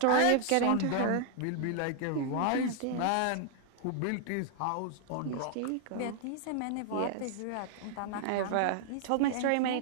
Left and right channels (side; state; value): both; different; correlation 0.00